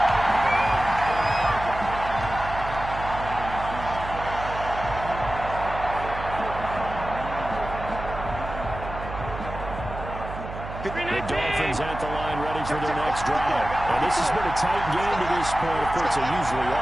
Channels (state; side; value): noise; right; hum, 10 dB below the sound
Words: The Dolphins at the line ready for their next drive. And this has been a tight game to this point. Of course, they usually